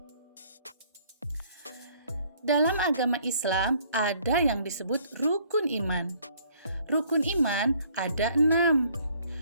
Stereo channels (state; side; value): inverted; both; correlation -0.61